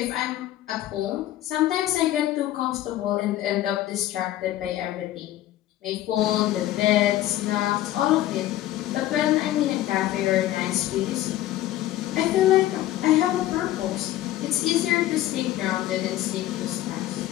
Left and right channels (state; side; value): quieter; right; 14.1 dB